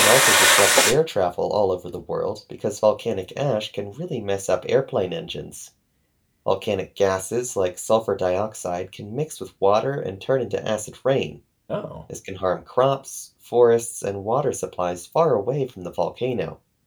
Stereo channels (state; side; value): identical; both; correlation 1.00